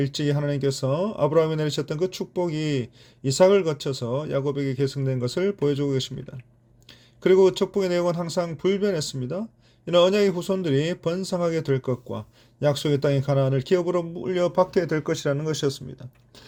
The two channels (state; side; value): identical; both; correlation 1.00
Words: 하나님께서 아브라함에 내리셨던 그 축복이 이삭을 거쳐서 야곱에게 계승된 것을 보여주고 계십니다. 그리고 그 축복의 내용은 항상 불변했습니다. 이는 언약의 후손들이 번성하게 될 것과 약속의 땅의 가나안을 기업으로 물려받게 될 것이라는 것이었습니다.